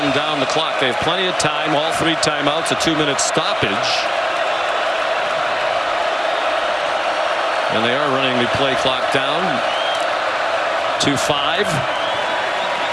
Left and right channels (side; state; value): both; identical; correlation 1.00